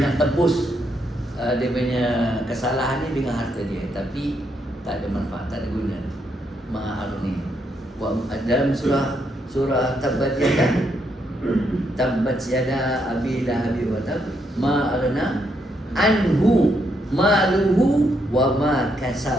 tebus dia punya kesalahan ni dengan harta dia, tapi tak ada manfaat, tak ada guna. Ma aghni. Dalam surah Tabbat yada abi lahabi wa tab ma aghna anhu maluhu wa ma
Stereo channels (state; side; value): normal; both; correlation 0.77